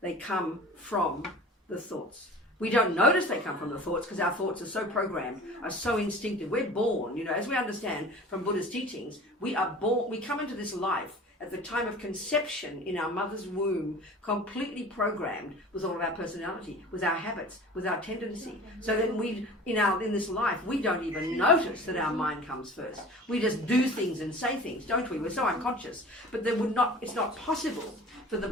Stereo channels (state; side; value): normal; both; correlation 0.41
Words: come from the thoughts. We don't notice they come from the thoughts because our thoughts are so programmed, are so instinctive. We're born, as we understand from Buddha's teachings, we are born, we come into this life at the time of conception in our mother's womb, completely programmed with all of our personality, with our habits, with our tendency. So that in this life, we don't even notice that our mind comes first. We just do things and say things, don't we? We're so unconscious. But it's not possible for the